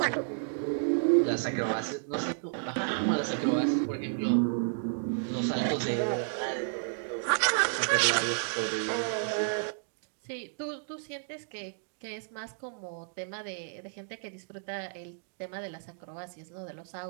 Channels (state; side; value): silent; left; digital silence